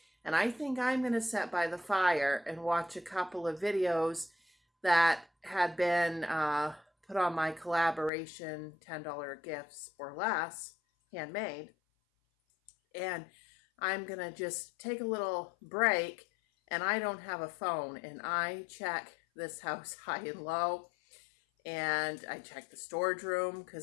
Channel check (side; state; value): right; drops out; at 8.1 s